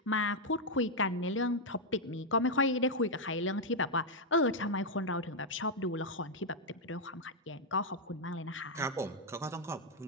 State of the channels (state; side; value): normal; both; correlation -0.01